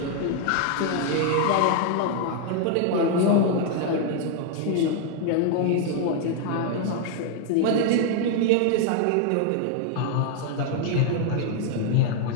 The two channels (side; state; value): both; different; correlation 0.00